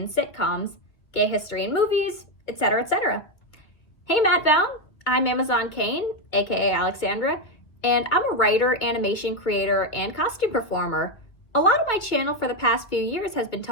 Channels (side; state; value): right; late; 2.3 ms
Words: sitcoms, gay history in movies, etc., etc. Hey Matt Baume, I'm AmazzonKane, aka Alexandra, and I'm a writer, animation creator, and costume performer. A lot of my channel for the past few years has been